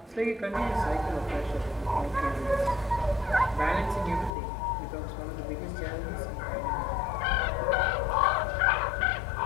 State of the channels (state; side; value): drops out; right; at 4.3 s